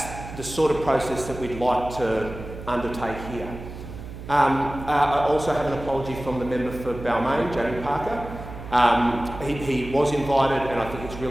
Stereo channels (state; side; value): noise; right; hum, 12 dB below the sound